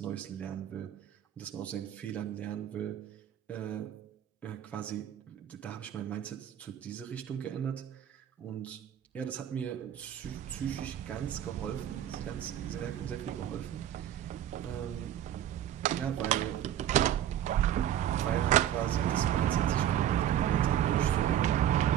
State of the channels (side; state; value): left; quieter; 10.9 dB